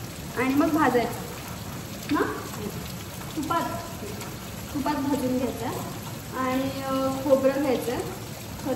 आणि मग भाजायचं ना, तुपात भाजून घ्यायचं आणि खोबरं घ्यायचं,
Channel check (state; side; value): identical; both; correlation 1.00